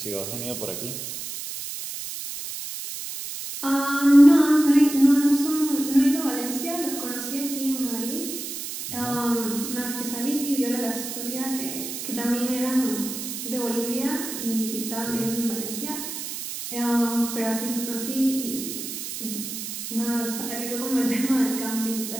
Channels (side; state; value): right; noise; hiss, 7 dB below the sound